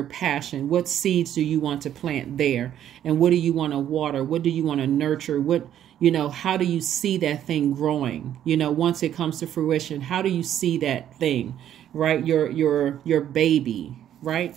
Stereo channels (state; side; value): quieter; left; 10.8 dB